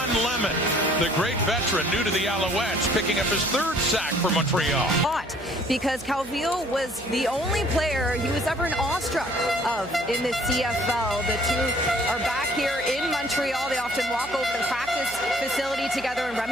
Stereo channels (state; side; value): noise; right; hum, 19 dB below the sound